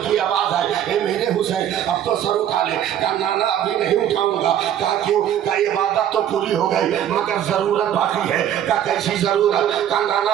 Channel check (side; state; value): left; quieter; 10.5 dB